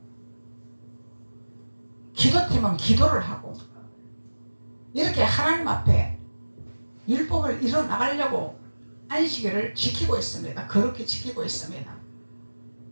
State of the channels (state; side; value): inverted; both; correlation -1.00